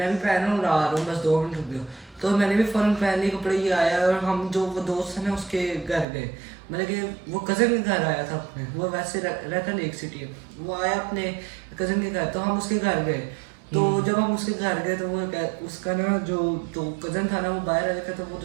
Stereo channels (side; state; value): left; drops out; at 6.1 s